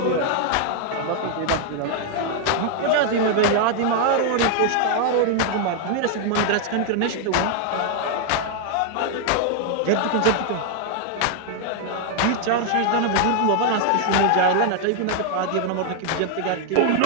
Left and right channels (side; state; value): both; different; correlation 0.00